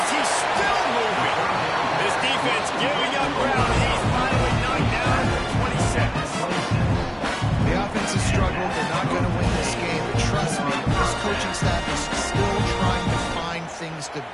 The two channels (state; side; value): identical; both; correlation 1.00